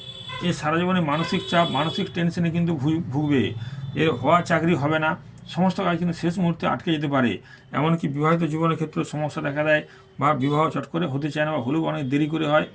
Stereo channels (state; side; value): identical; both; correlation 1.00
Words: এ সারা জীবনে মানসিক চাপ, মানসিক টেনশনে কিন্তু ভুগবে, এর হওয়া চাকরি হবে না, সমস্ত কাজ কিন্তু শেষ মুহূর্তে আটকে যেতে পারে। এমনকি বিবাহিত জীবনের ক্ষেত্রে সমস্যা দেখা দেয় বা বিবাহ চট করে হতে চায় না বা হলেও অনেক দেরি করে হয়।